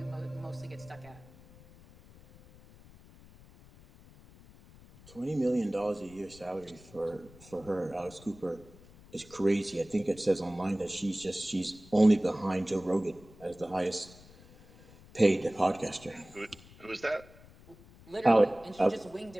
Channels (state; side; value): noise; left; rumble, 22 dB below the sound